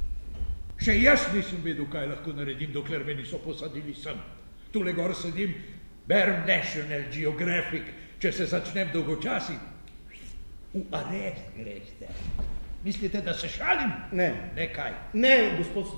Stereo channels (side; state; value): both; inverted; correlation -1.00